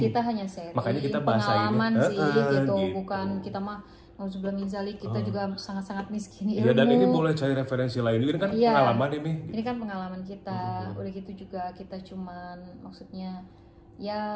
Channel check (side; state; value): both; identical; correlation 1.00